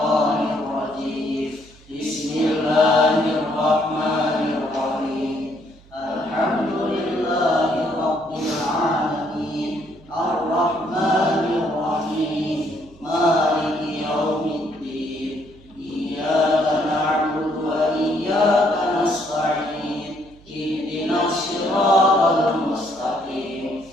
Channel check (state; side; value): noise; right; hum, 25 dB below the sound